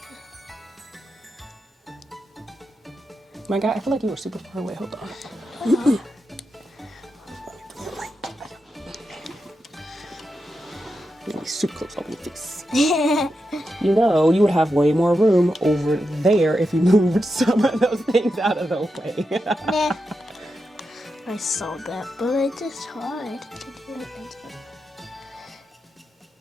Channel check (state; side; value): normal; both; correlation 0.87